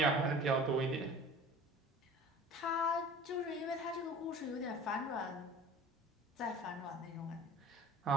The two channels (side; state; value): both; normal; correlation 0.42